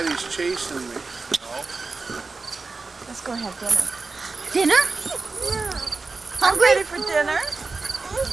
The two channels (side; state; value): left; quieter; 4.0 dB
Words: chasing me. Let's go have dinner. Dinner? I'm ready for dinner.